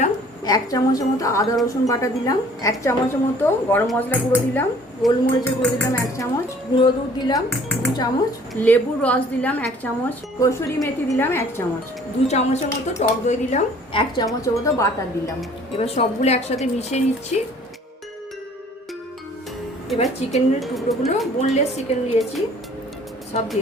1 চামচের মতো আদা রসুন বাটা দিলাম, 1 চামচের মতো গরম মশলা গুঁড়ো দিলাম, গোলমরিচের গুঁড়ো দিলাম 1 চামচ, গুঁড়ো দুধ দিলাম 2 চামচ, লেবুর রস দিলাম 1 চামচ, কসুরি মেথি দিলাম 1 চামচ, 2 চামচের মতো টক দই দিলাম, 1 চামচের মতো বাটার দিলাম। এবার সবগুলো একসাথে মিশিয়ে নিচ্ছি। এবার চিকেনের টুকরোগুলো, বোনলেস চিকেন নিয়েছি, সব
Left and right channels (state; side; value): normal; both; correlation 0.54